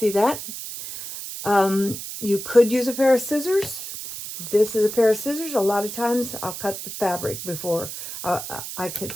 that? You could use a pair of scissors. This is a pair of scissors. A lot of times I'll cut the fabric before I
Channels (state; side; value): noise; right; hiss, 9 dB below the sound